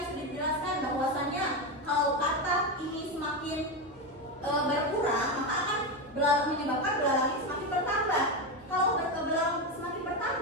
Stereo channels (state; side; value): normal; both; correlation 0.13